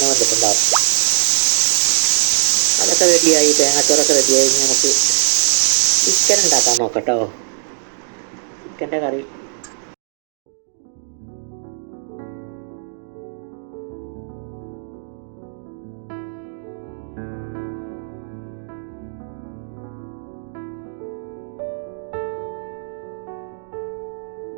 വന്നിട്ടുണ്ടാവും. അതൊക്കെ റെഡിയായി, തേങ്ങാച്ചോറൊക്കെ റെഡിയായി. നമുക്ക് ചിക്കൻ ഉണ്ടാക്കാൻ നോക്കാം കേട്ടോ. ചിക്കൻ്റെ കറി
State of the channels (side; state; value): left; silent; 66 dB below the other